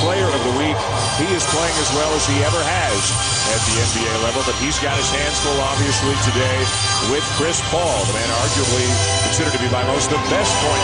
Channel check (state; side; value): identical; both; correlation 1.00